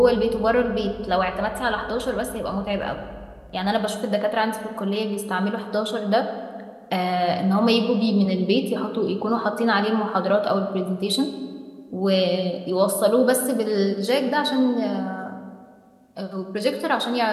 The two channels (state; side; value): identical; both; correlation 1.00